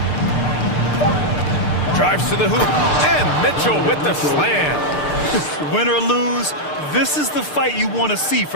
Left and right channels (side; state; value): right; late; 6.7 ms